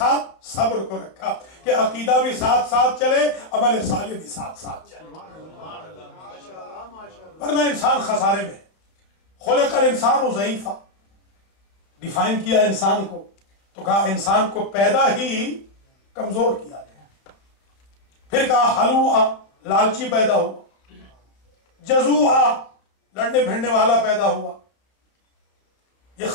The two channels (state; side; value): late; right; 32 ms